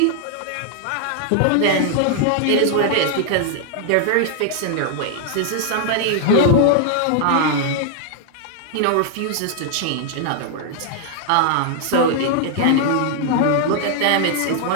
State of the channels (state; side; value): different; both; correlation 0.00